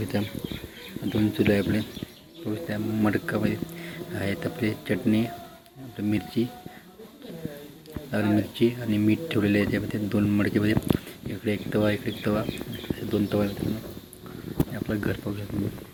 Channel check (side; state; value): both; identical; correlation 1.00